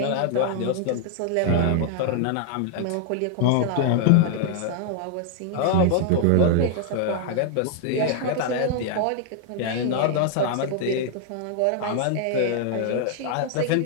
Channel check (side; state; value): both; different; correlation 0.00